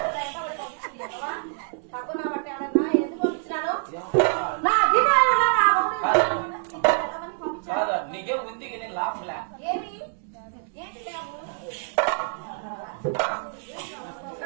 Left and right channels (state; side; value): silent; left; 61 dB below the other